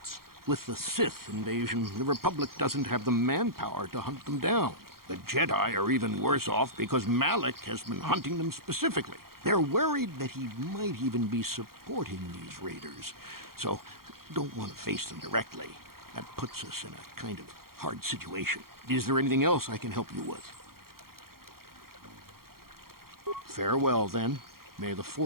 With the Sith invasion, the Republic doesn't have the manpower to hunt them down. The Jedi are even worse off because Malak has been hunting them specifically. They're worried that he might even be supporting these raiders, so don't want to face them directly. That puts us in a kind of hard situation. Is there anything else I can help you with? Farewell, then. May the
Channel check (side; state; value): left; late; 0.93 ms